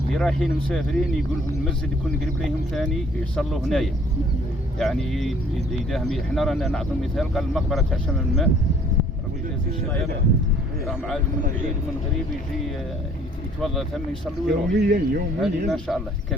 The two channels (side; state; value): both; normal; correlation 0.58